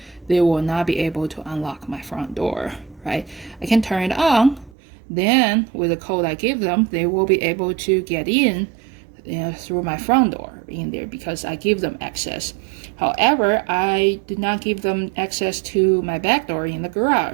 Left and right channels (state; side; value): drops out; left; at 4.7 s